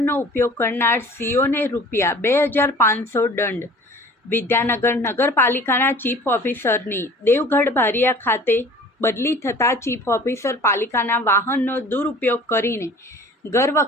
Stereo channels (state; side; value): normal; both; correlation 0.47